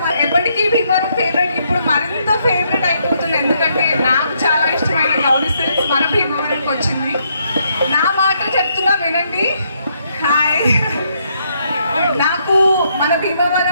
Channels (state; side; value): inverted; both; correlation -0.74